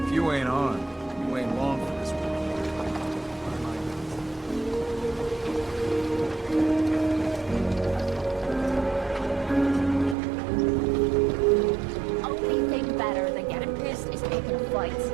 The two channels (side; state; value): left; drops out; at 10.2 s